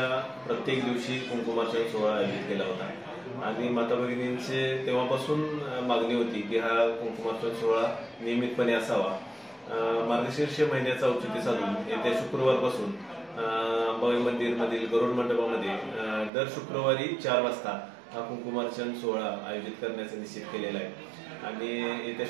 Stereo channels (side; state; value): left; drops out; at 16.3 s